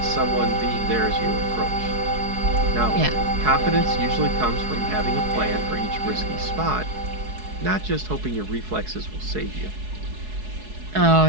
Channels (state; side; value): late; left; 4.7 ms